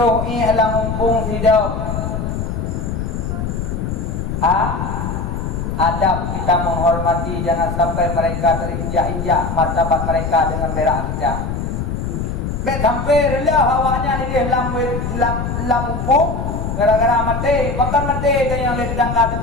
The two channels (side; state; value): left; noise; rumble, 3 dB below the sound